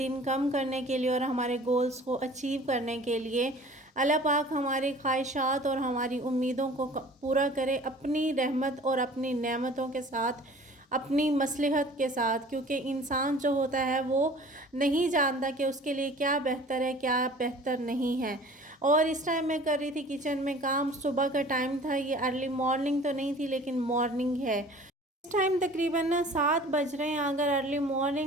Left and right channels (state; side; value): normal; both; correlation 0.46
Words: कम करने के लिए और हमारे गोल्स को अचीव करने के लिए। अल्लाह पाक हमारी ख्वाहिशात और हमारी उम्मीदों को पूरा करे अपनी रहमत और अपनी नेमतों के साथ, अपनी मसलहत के साथ, क्योंकि इंसान जो होता है वो नहीं जानता कि उसके लिए क्या बेहतर है क्या बेहतर नहीं है। और इस टाइम मैं कर रही थी किचन में काम। सुबह का टाइम था, ये अर्ली मॉर्निंग तो नहीं थी लेकिन मॉर्निंग है। इस टाइम तकरीबन ना 7 बज रहे हैं। अगर अर्ली